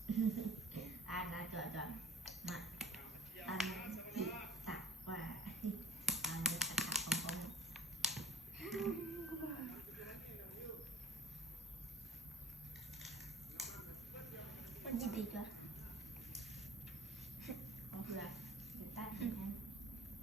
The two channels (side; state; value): both; normal; correlation 0.42